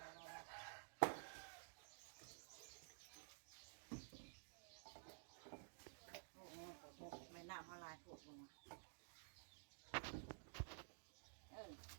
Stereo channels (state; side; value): silent; left; digital silence